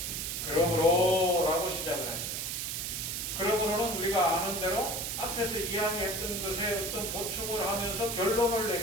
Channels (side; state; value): right; noise; hiss, 3 dB below the sound